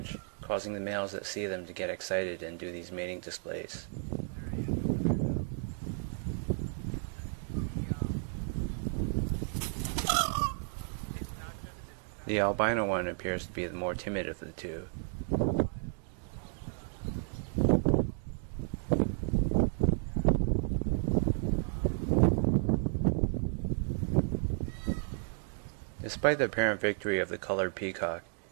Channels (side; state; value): left; silent; 56 dB below the other